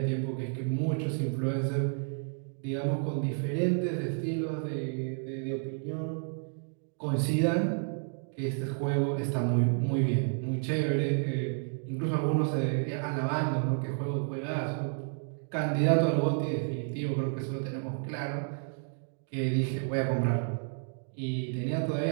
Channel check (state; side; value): silent; left; 57 dB below the other